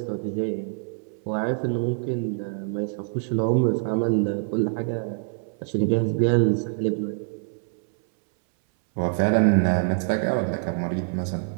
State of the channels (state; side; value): silent; left; 61 dB below the other